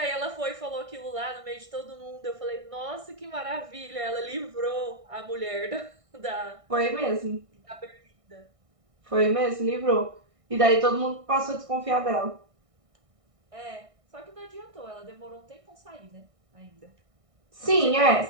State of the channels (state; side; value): late; left; 1.6 ms